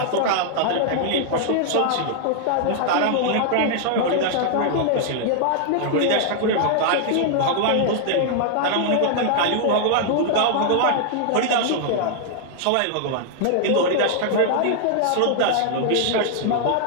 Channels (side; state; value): both; different; correlation -0.01